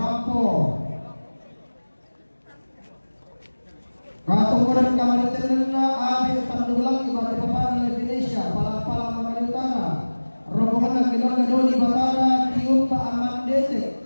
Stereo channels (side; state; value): both; inverted; correlation -1.00